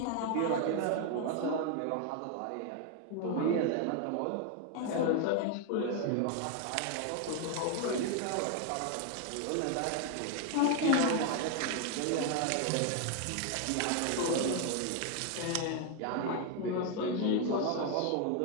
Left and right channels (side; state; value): both; different; correlation 0.01